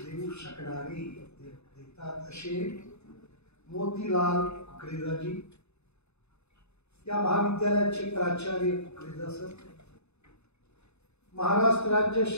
देऊ शकणारे देतात असे मोतीलाल कुकरेजाजी, या महाविद्यालयाचे प्राचार्य कुकरेजा सर, महाराष्ट्र राज्य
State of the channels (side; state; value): right; late; 0.80 ms